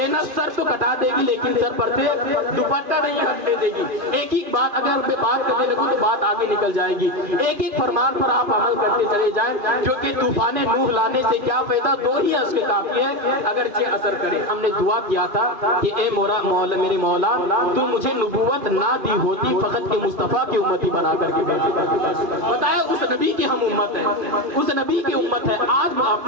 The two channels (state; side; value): late; left; 2.5 ms